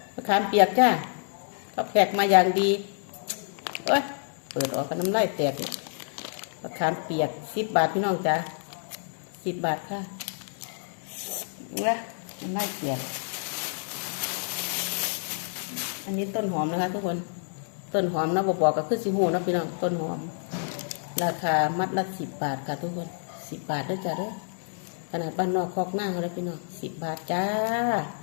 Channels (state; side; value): silent; right; digital silence